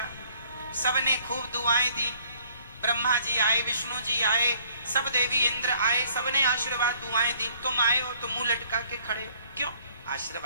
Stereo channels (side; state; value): both; inverted; correlation -0.60